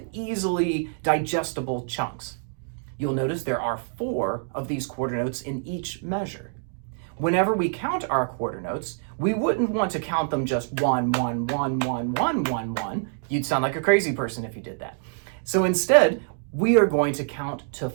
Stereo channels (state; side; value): silent; left; 61 dB below the other